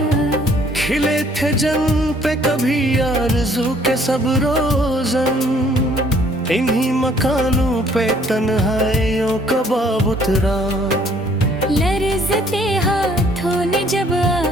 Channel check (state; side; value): normal; both; correlation 0.61